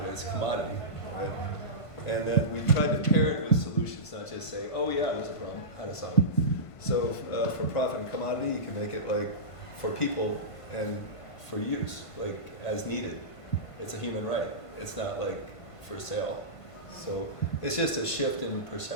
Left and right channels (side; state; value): right; late; 1.5 ms